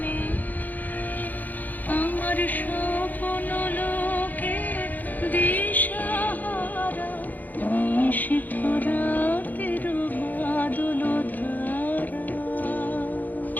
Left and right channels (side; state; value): right; late; 0.083 ms